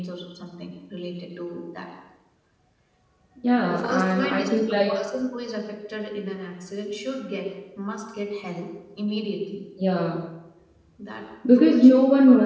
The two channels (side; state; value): both; identical; correlation 1.00